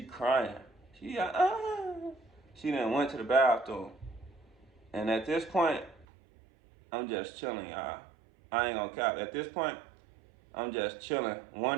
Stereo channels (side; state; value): left; drops out; at 6.1 s